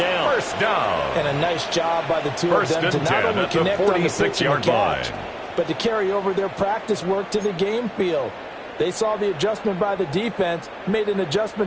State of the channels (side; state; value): both; identical; correlation 1.00